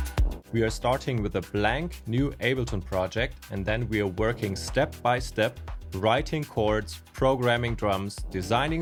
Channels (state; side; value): identical; both; correlation 1.00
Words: We are starting with a blank new Ableton project, and then we are working step by step, writing chords, programming drums, designing